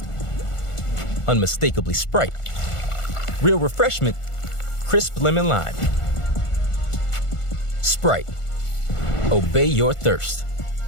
unmistakably Sprite. Real refreshment, crisp lemon lime. Sprite, obey your thirst.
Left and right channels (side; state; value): right; late; 1.4 ms